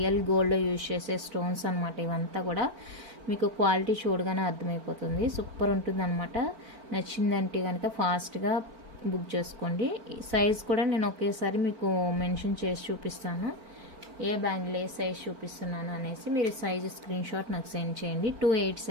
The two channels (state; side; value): late; left; 4.5 ms